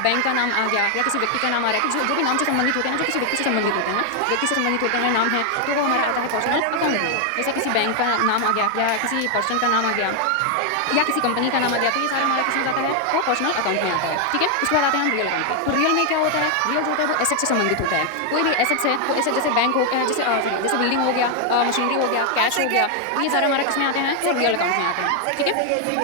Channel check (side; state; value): both; different; correlation 0.00